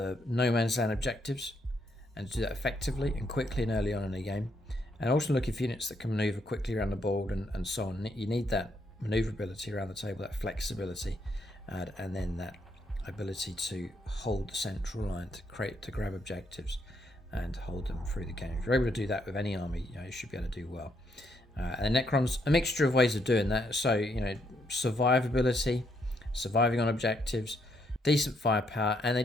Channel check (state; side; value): normal; both; correlation 0.74